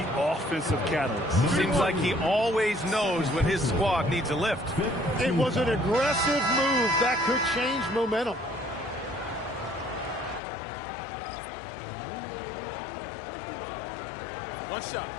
offensive catalyst. Seems like he always knows when his squad needs a lift. It was an aggressive move that could change momentum. One shot.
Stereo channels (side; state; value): right; drops out; at 10.4 s